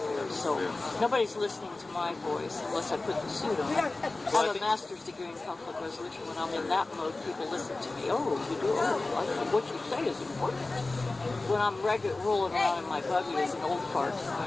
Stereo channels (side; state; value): right; quieter; 3.2 dB